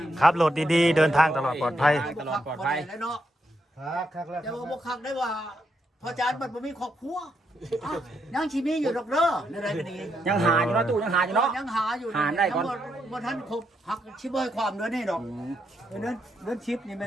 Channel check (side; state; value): both; normal; correlation 0.80